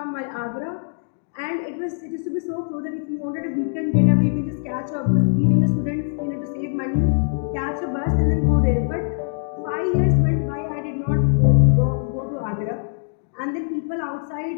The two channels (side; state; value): right; silent; digital silence